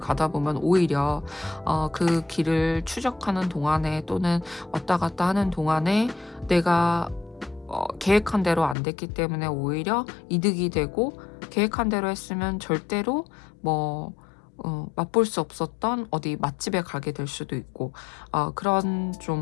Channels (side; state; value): right; drops out; at 8.8 s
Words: 보면 오히려 그 길을 추적하는 동안에 또는 왔다 갔다 하는 동안에 내가 계획한 대로 안 됐기 때문에 오히려 이득이 되고, 계획한 대로 했으면 절대로 맛볼 수 없었던 어디 맛집에 가게 될 수도 있고, 그런